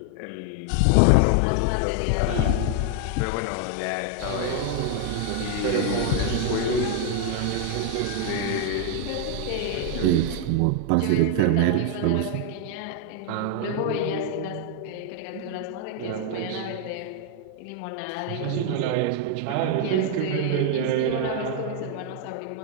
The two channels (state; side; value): different; both; correlation 0.00